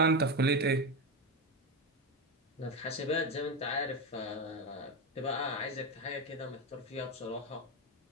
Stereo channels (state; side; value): normal; both; correlation 0.14